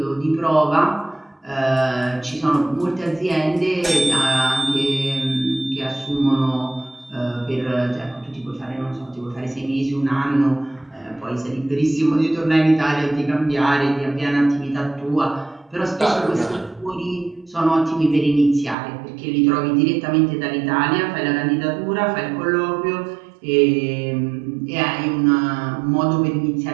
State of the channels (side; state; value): left; drops out; at 18.8 s